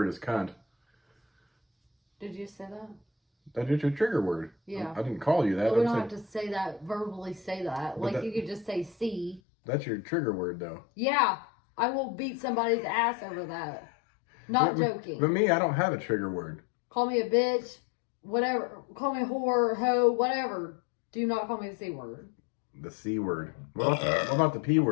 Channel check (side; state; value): right; drops out; at 9.4 s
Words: is cunt. Did you say that? That is your trigger word. Yeah. I didn't call you that. But we don't have to say that, verbally say that. Like, you could just say C. That's your trigger word, though. Yeah. I will beat somebody's ass over that. Not joking. But me, I don't have a trigger word. Call me a bitch, whatever. Call me a whore, hoe, whatever. Do not call me the C word. The C word. What about the P